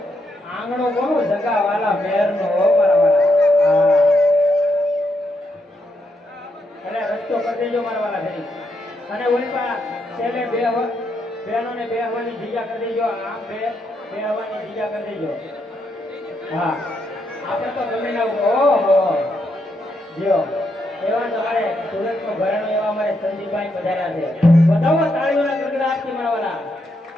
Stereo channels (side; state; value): both; normal; correlation 0.79